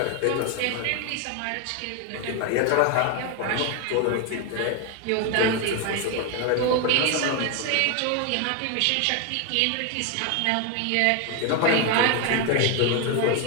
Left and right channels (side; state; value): both; different; correlation 0.01